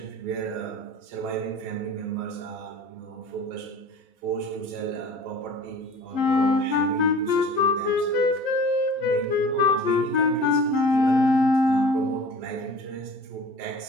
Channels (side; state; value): left; late; 12 ms